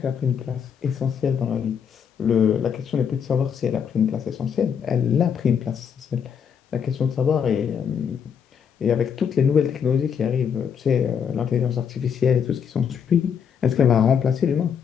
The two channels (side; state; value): right; quieter; 7.4 dB